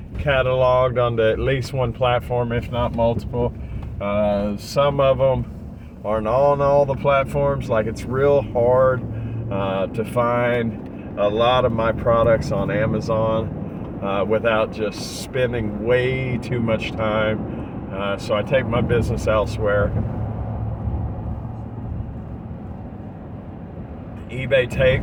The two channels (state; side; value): identical; both; correlation 1.00